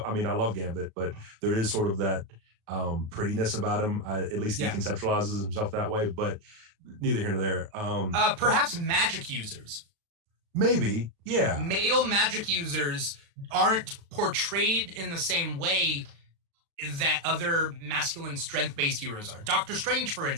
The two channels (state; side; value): late; left; 36 ms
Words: I mean, I love Gambit, but there is sort of that prettiness about him. At least he conceptualizes himself that way. But neither here nor there. Perhaps magic users. Maybe, yeah. Male magic users aren't portrayed in the same way that other masculine strength-based heroes are. Doctor Strange, for